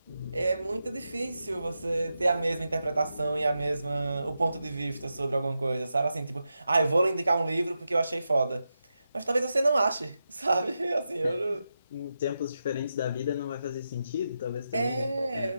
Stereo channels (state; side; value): inverted; both; correlation -0.88